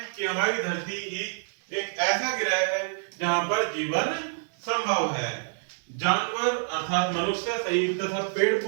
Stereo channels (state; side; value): silent; left; digital silence